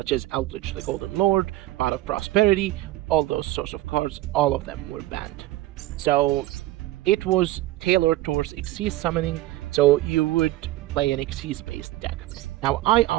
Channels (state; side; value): quieter; left; 16.5 dB